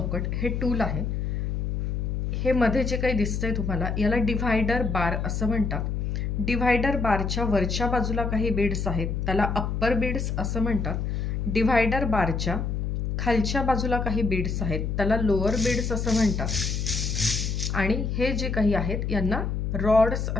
हे टूल आहे। हे मध्ये जे काही दिसतंय तुम्हाला याला डिव्हायडर बार असं म्हणतात। डिव्हायडर बारच्या वरच्या बाजूला काही बीड्स आहेत त्याला अप्पर बीड्स असं म्हणतात। डिव्हायडर बारच्या खालच्या बाजूला काही बीड्स आहेत त्याला लोअर बीड्स असं म्हणतात। आणि हे जे काही आहेत यांना रॉड्स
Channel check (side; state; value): left; noise; hum, 1 dB below the sound